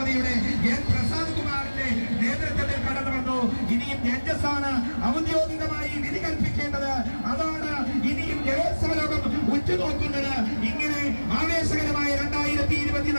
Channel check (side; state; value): both; inverted; correlation -1.00